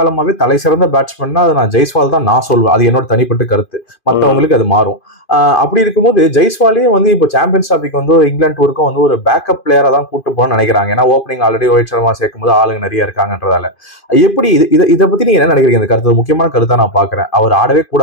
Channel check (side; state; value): right; late; 2.5 ms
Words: தலை சிறந்த பேட்ஸ்மேன்னா அது நான் ஜெய்ஸ்வால் தான் நான் சொல்வேன். அது என்னோட தனிப்பட்ட கருத்து, மற்றவங்களுக்கு அது மாறும். அப்படி இருக்கும்போது ஜெய்ஸ்வாலே வந்து இப்போ சாம்பியன்ஸ் டிராஃபிக்கு வந்து இங்கிலாந்து டூருக்கும் வந்து ஒரு பேக்கப் பிளேயரா தான் கூட்டு போகணும்னு நினைக்கிறாங்க. ஏன்னா ஓப்பனிங் ஆல்ரெடி ரோஹித் சர்மா சேர்க்கும் போது ஆளுங்க நிறைய இருக்காங்கன்றதால. எப்படி இதை பத்தி நீங்க என்ன நினைக்கிறீங்க? இந்த கருத்து முக்கியமான கருத்தா நான் பாக்குறேன். அவர் ஆடவே